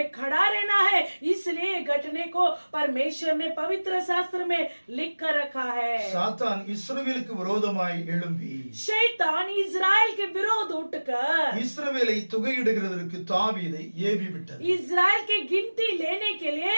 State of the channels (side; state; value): both; inverted; correlation -1.00